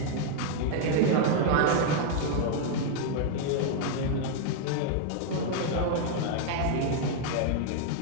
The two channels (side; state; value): both; different; correlation 0.00